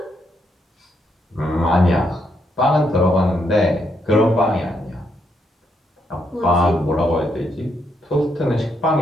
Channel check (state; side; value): normal; both; correlation 0.77